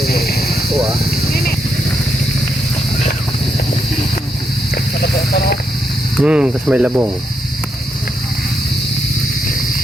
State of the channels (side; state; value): both; normal; correlation 0.80